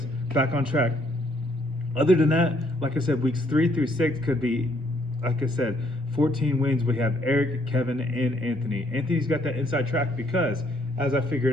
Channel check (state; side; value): normal; both; correlation 0.68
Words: back on track. Other than that, like I said, weeks 3 through 6 could be, like I said, 14 wins. We have Eric, Kevin, and Anthony. Anthony's got that inside track because, as I